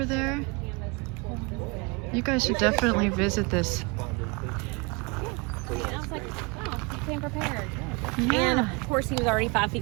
there. You guys should definitely visit this. And I was like, oh, he came prepared. Yeah. And of course, he was already 5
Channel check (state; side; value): quieter; left; 28.9 dB